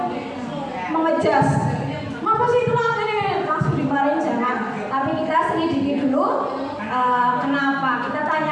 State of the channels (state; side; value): identical; both; correlation 1.00